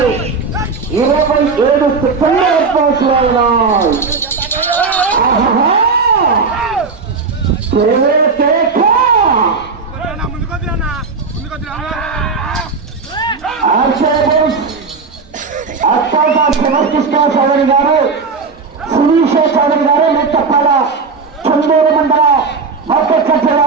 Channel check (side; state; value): left; quieter; 4.7 dB